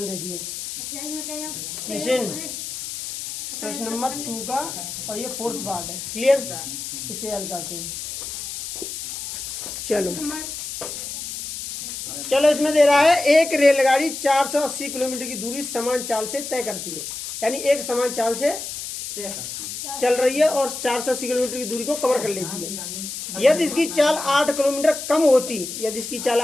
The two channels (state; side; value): noise; left; hiss, 7 dB below the sound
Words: देखिए, निशिन प्रश्न नंबर 2 का, और ये 4th पार्ट है। क्लियर, इसे हल करते हैं। चलो इसमें दे रहा है एक रेलगाड़ी 480 किलोमीटर की दूरी समान चाल से तय करती है। यानी एक समान चाल से चल रही है और 480 किलोमीटर की दूरी को कवर कर लेती है। यदि इसकी चाल 8 किलोमीटर कम होती, यदि इसकी चाल